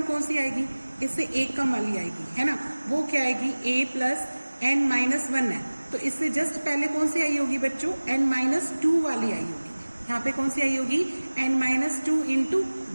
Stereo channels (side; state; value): both; inverted; correlation -1.00